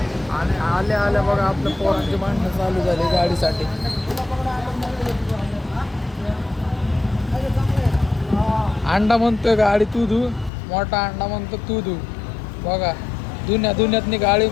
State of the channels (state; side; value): drops out; right; at 10.5 s